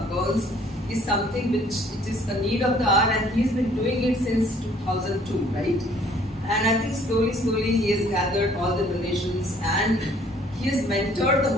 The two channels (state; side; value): normal; both; correlation 0.59